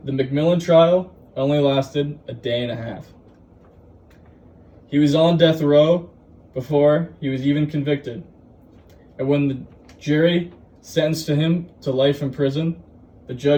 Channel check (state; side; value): identical; both; correlation 1.00